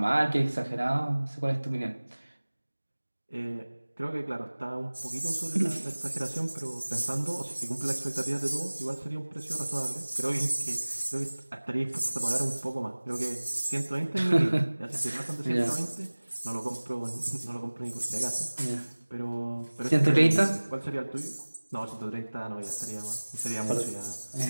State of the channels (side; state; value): both; inverted; correlation -1.00